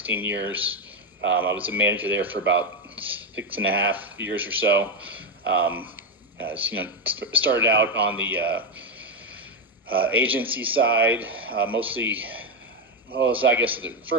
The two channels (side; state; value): both; normal; correlation 0.08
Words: years. I was a manager there for about 6.5 years or so. Started out on the agency side, mostly. Well, so I guess at